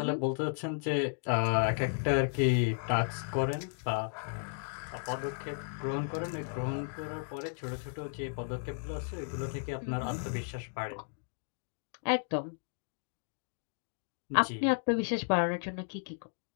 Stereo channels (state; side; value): silent; right; digital silence